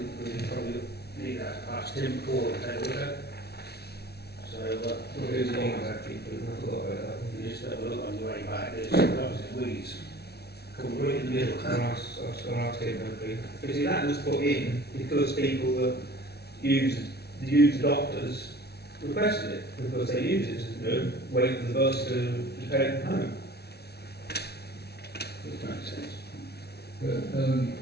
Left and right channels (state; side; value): late; right; 0.47 ms